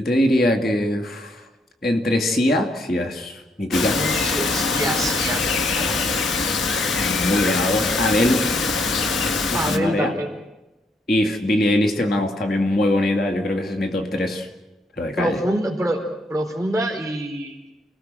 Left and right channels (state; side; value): normal; both; correlation 0.73